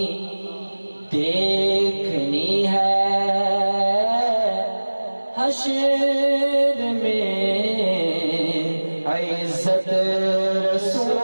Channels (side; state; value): both; inverted; correlation -1.00